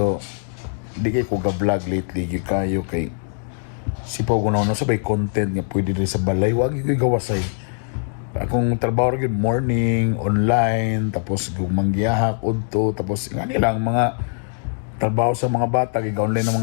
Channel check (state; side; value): silent; right; digital silence